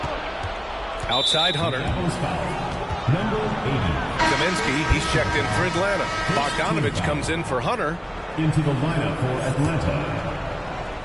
Outside Hunter. Number 80. Kaminsky, he's checked in for Atlanta. Bogdanovich comes in for Hunter. Into the lineup for Atlanta,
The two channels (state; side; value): identical; both; correlation 1.00